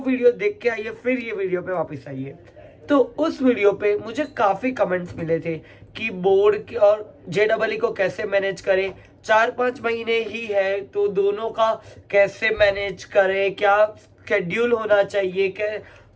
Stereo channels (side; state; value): both; identical; correlation 1.00